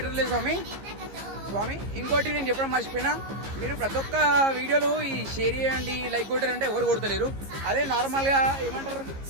స్వామి. ఇంకోటి నేను చెప్పడం మర్చిపోయినా, మీరు ప్రతి ఒక్క వీడియోలు ఈ షేర్ చేయండి, లైక్ కొట్టారంటే ఎవరు కొడతలేరు. అదే నార్మల్గా ఏమంటారు,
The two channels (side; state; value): left; late; 15 ms